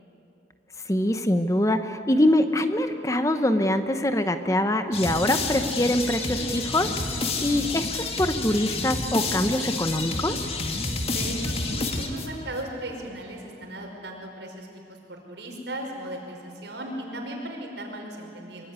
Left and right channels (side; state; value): both; normal; correlation 0.68